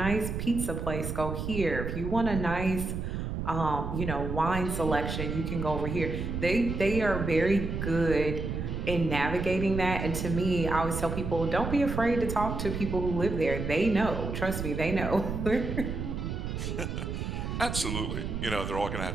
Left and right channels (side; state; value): right; noise; rumble, 4 dB below the sound